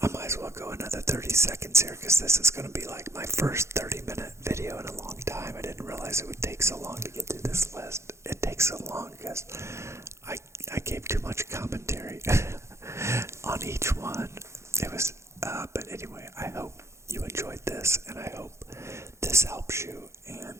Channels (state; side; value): late; left; 0.13 ms